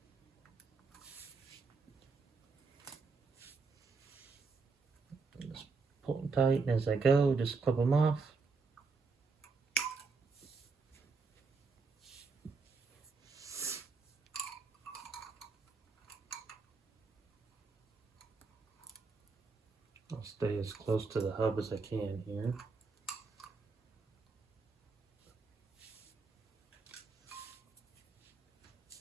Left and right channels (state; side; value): quieter; left; 4.5 dB